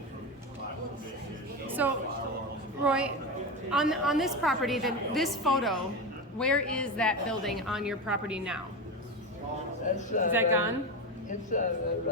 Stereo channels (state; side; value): normal; both; correlation 0.18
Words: for private fishing. No So, firearms. Roy, on this property, this photo, where is that building on your property now? That's, Is that gone? It's